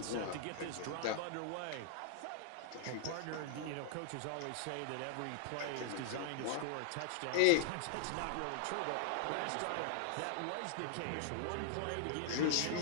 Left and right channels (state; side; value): different; both; correlation 0.00